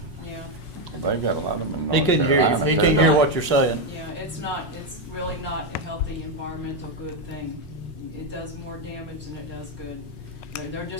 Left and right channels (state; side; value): late; right; 5.5 ms